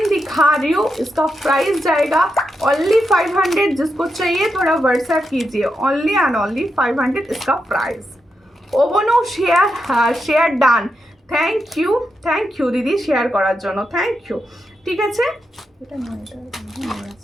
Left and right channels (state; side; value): normal; both; correlation 0.85